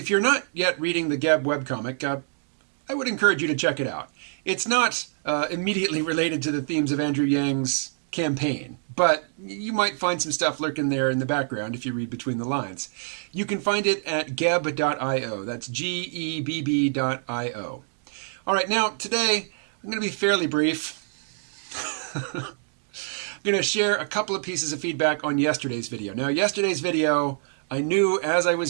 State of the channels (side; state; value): left; silent; digital silence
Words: you're not yet reading the Geb webcomic, I would encourage you to check it out. It's not immediately related to the themes of Andrew Yang's campaign, but you might find some stuff lurking there in the background if you read between the lines. You can find it at gebb.io. That's gebb.io. All right, now today I'm going to be fairly brief. I'm going to share a couple of pieces of feedback on yesterday's video. Now, yesterday's video, I knew as I